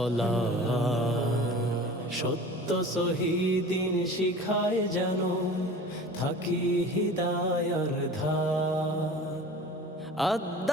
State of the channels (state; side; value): normal; both; correlation 0.39